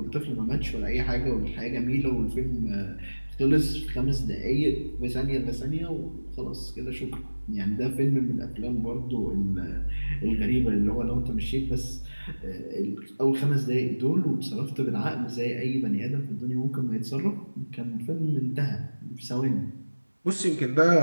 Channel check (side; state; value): both; inverted; correlation -1.00